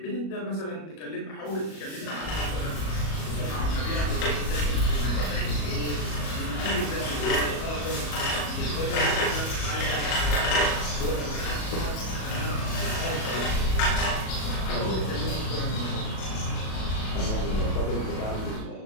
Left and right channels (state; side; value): late; right; 37 ms